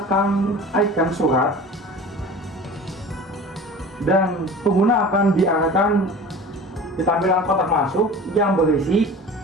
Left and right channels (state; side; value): normal; both; correlation 0.39